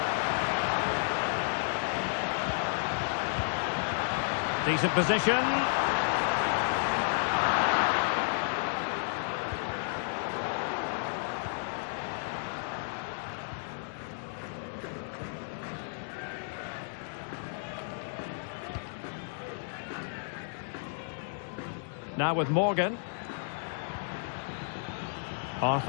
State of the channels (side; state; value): right; silent; 56 dB below the other